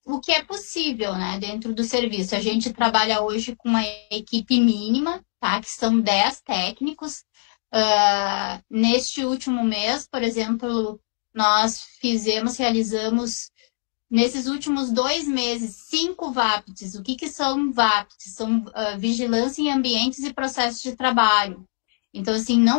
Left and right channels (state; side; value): silent; right; digital silence